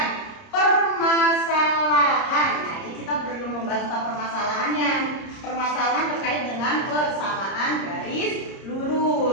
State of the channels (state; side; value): late; right; 30 ms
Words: permasalahan. Nah, ini kita belum membahas tentang permasalahannya. Permasalahan terkait dengan persamaan garis